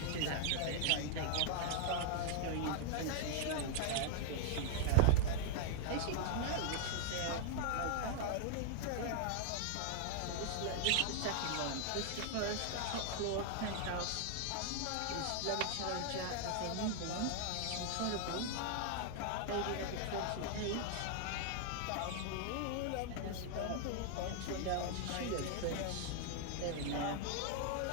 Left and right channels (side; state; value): both; different; correlation 0.00